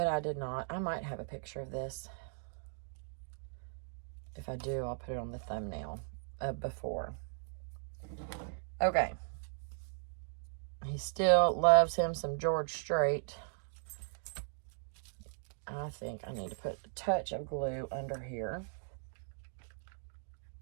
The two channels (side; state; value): left; silent; digital silence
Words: I did not. I might have a picture of this. If I do, I'll put it on the thumbnail before. Okay. He still loves him some George Strait. I think I need to put a touch of glue under here.